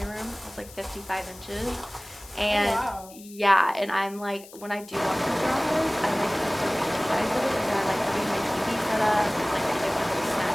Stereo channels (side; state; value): left; noise; hiss, 19 dB below the sound